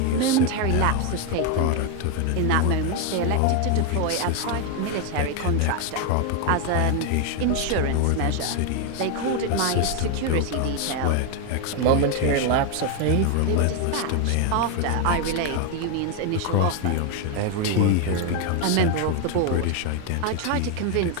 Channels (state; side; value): different; both; correlation 0.01